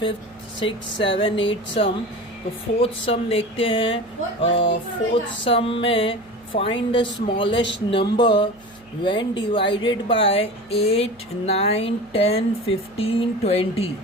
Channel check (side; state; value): right; noise; hum, 29 dB below the sound